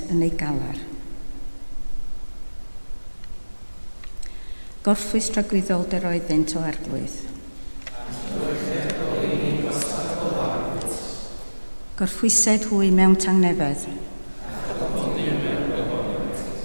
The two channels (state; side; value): inverted; both; correlation -1.00